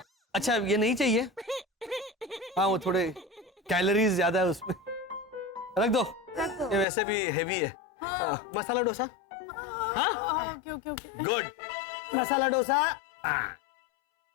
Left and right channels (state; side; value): drops out; right; at 6.9 s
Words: अच्छा ये नहीं चाहिए? हाँ वो थोड़े कैलोरीज ज्यादा है उसमें, रख दो। ये वैसे भी हेवी है। मसाला डोसा। हाँ okay okay okay. Good, masala dosa.